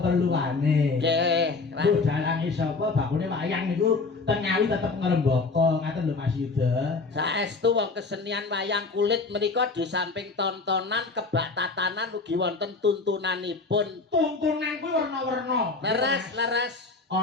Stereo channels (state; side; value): quieter; right; 4.0 dB